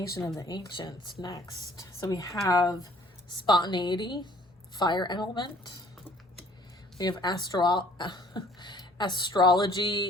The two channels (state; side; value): normal; both; correlation 0.56